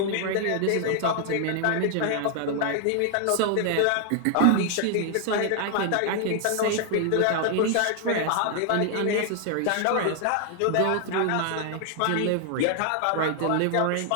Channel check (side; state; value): both; different; correlation 0.00